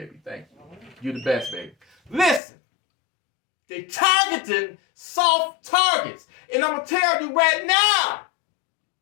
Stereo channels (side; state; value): right; drops out; at 2.4 s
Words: Thank you. You're the best, baby. Listen, they targeting soft targets. And I'm going to tell you right